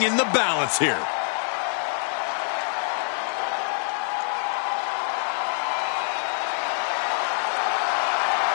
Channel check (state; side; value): silent; right; digital silence